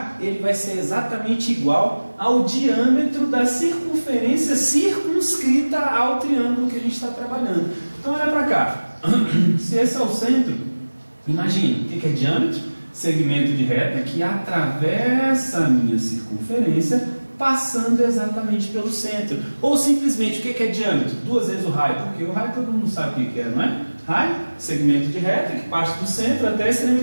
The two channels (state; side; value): inverted; both; correlation -1.00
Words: ele vai ser exatamente igual ao diâmetro da circunferência circunscrita ao triângulo que a gente está trabalhando. Então olha para cá, se esse é o centro, imagina, o que é diâmetro? Segmento de reta que atravessa a minha circunferência, passando exatamente pelo centro. Ou simplesmente, o que é diâmetro? 2 vezes o raio, porque o raio todo mundo sabe o que é, não é? Raio, segmento de reta que parte do centro até a